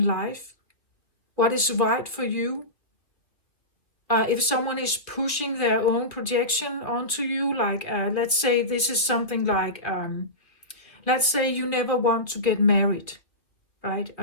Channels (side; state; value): right; late; 2.4 ms